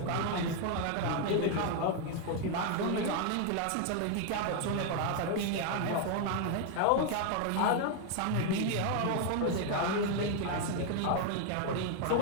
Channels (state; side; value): different; both; correlation 0.01